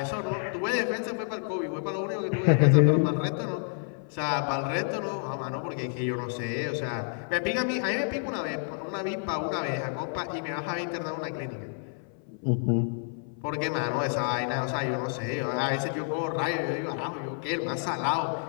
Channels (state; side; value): silent; right; 58 dB below the other